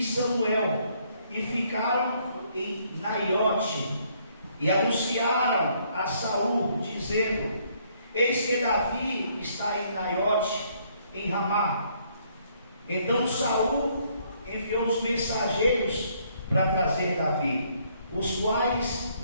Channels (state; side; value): inverted; both; correlation -0.68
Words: Samuel, e ficaram em Naiote, e anunciaram a Saul, dizendo: eis que Davi está em Naiote, em Ramá. Então Saul enviou os mensageiros para trazer Davi, os quais